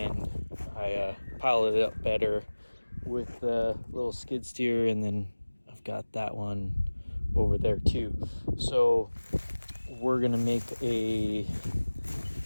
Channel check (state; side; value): inverted; both; correlation -1.00